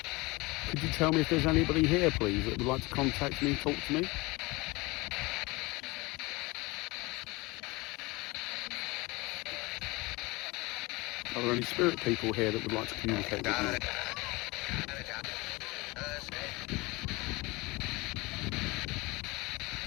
Could you tell me if there's anybody here, please, that would like to contact me, talk to me? Are there any spirit people here that would like to communicate with me?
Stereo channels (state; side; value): quieter; right; 23.5 dB